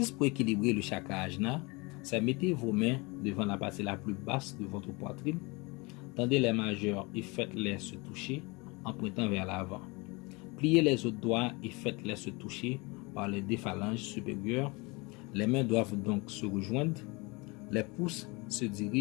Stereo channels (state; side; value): quieter; right; 26.8 dB